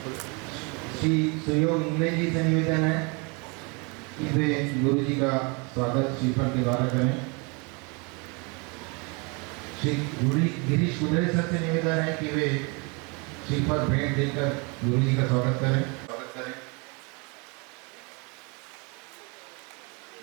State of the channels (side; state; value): left; quieter; 31.0 dB